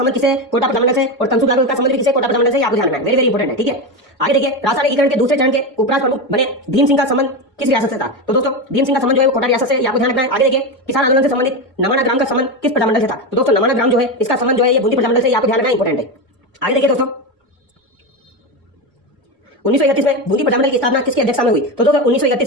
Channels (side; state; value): both; normal; correlation 0.16